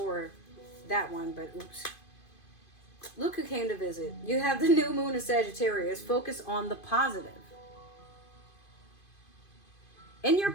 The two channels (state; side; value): late; right; 2.5 ms